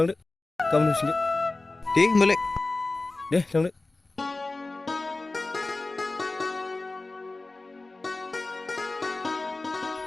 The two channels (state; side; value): quieter; right; 3.2 dB